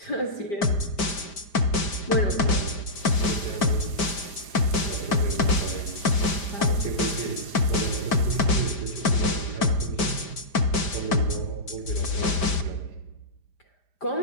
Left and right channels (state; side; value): late; right; 5.1 ms